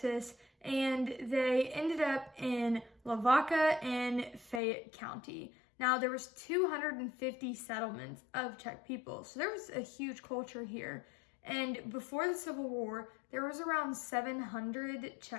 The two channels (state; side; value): drops out; right; at 4.6 s